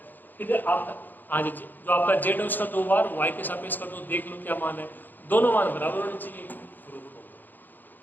फिर आप हाँ जी, जो आपका z है उसका 2 बार y के सापेक्ष कर दो, देख लो क्या मान है। दोनों मान बराबर होने चाहिए, प्रूफ हो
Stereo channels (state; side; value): late; right; 0.088 ms